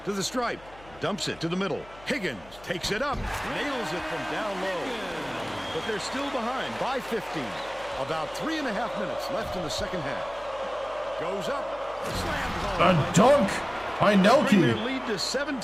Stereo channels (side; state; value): left; noise; hum, 22 dB below the sound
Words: To the stripe. Dumps it to the middle. Higgins takes it up. Nails it from down low. But they're still behind by 15. About 3.5 minutes left in the second half. Goes up. Slammed home. A dunk by Bring their Nelke. lead to